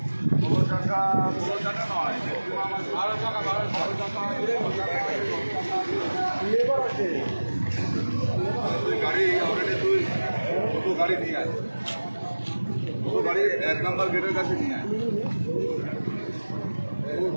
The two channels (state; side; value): inverted; both; correlation -1.00